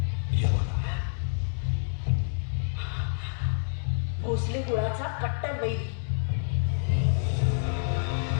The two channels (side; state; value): right; silent; 59 dB below the other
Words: भोसले कुळाचा कट्टर वैरी.